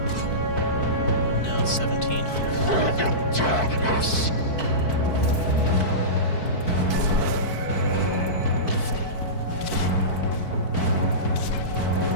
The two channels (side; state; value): right; late; 4.6 ms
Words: Now it's 17 here.